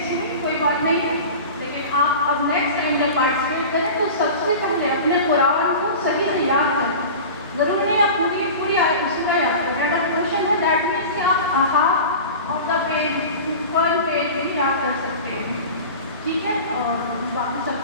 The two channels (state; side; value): inverted; both; correlation -0.34